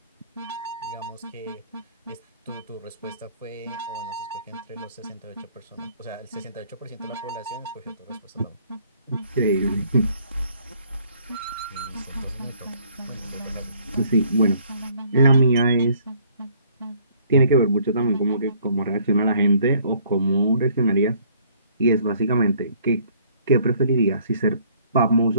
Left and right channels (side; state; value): both; inverted; correlation -0.61